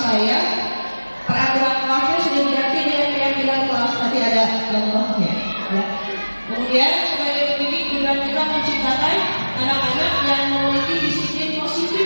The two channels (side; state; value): both; inverted; correlation -1.00